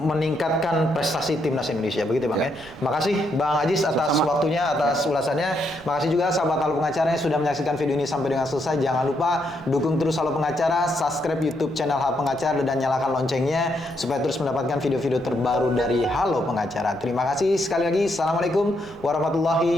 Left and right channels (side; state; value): right; noise; rumble, 22 dB below the sound